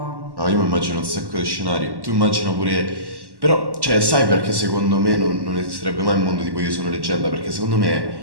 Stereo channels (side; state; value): left; late; 1.1 ms